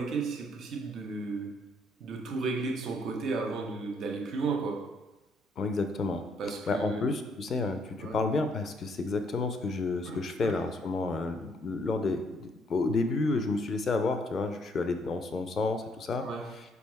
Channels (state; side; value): normal; both; correlation 0.69